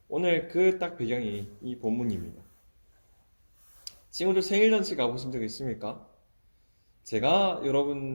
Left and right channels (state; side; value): inverted; both; correlation -1.00